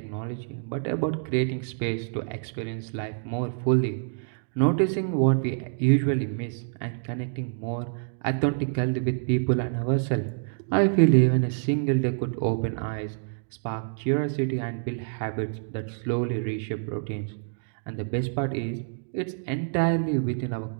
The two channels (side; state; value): left; silent; digital silence